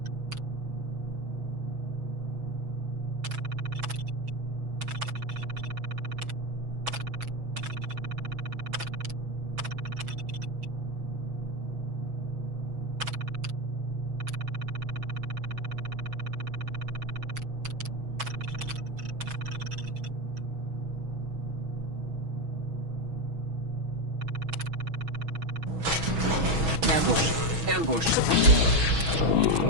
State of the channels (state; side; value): late; left; 6.2 ms